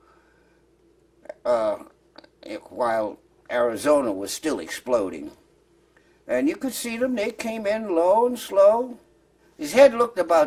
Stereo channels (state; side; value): identical; both; correlation 1.00